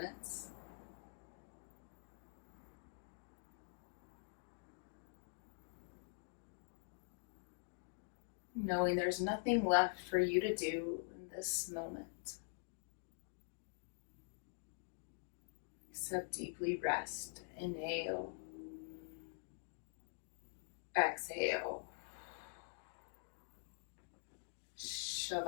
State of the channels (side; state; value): right; silent; digital silence